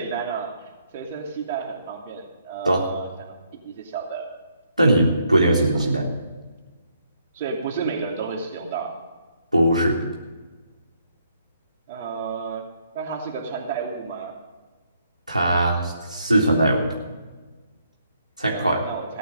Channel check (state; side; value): inverted; both; correlation -0.72